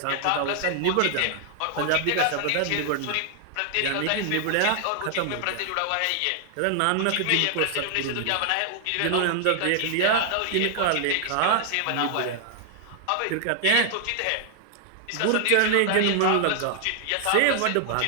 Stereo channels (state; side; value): different; both; correlation 0.00